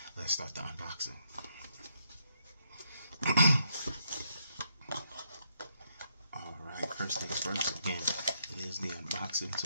Let's start the unboxing. Alright, first things first. Again, it is the unboxing,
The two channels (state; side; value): inverted; both; correlation -0.76